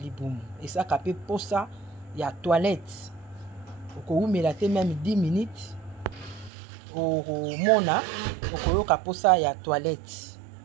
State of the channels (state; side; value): drops out; left; at 6.5 s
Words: esaka mpe posa ya toilette okowumela te meme 10 minutes okomona okoyoka posa ya toilette